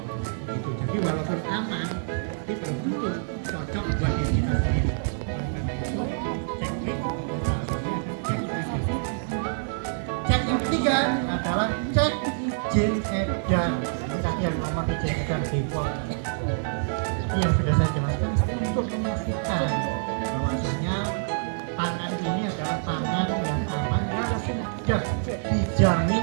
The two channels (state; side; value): silent; left; digital silence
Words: gitu. Jadi walaupun aman tapi belum tentu cocok buat diri kita sendiri. Cek yang ketiga adalah cek izin edar. Tadi yang nomor izin edar BPOM yang sudah saya jelaskan untuk memastikan bahwasanya pangan ini adalah pangan yang aman yang sudah